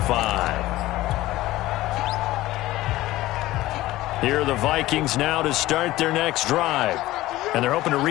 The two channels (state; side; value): quieter; right; 16.8 dB